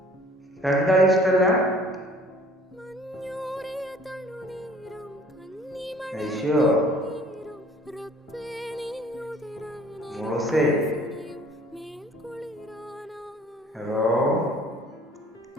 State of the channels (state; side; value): normal; both; correlation 0.53